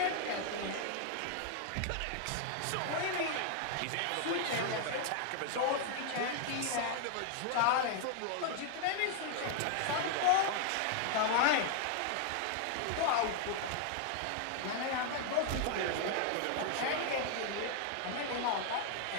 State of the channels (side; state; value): both; different; correlation 0.00